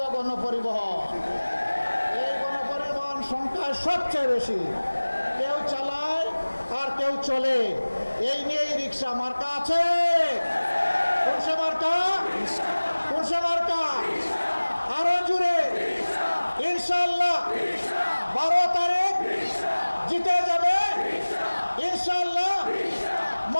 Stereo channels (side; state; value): both; inverted; correlation -1.00